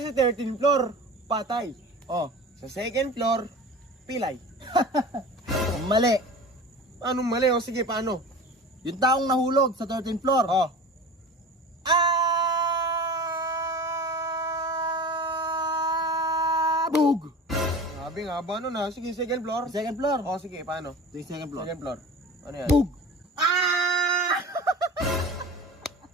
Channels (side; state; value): both; normal; correlation 0.36